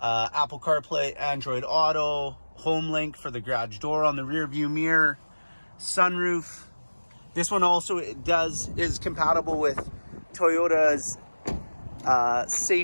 CarPlay, Android Auto, home link for the garage door on the rear view mirror, sunroof. This one also is compatible with Toyota's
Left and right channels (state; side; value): inverted; both; correlation -1.00